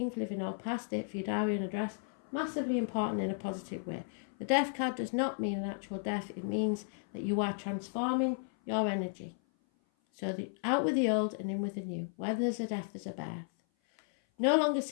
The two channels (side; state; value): right; silent; 55 dB below the other